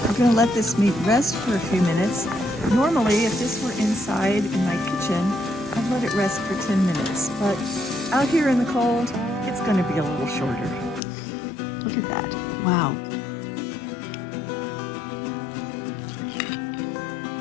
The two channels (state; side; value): drops out; right; at 11.0 s